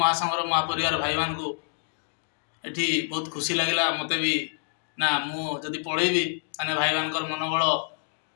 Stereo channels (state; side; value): silent; right; digital silence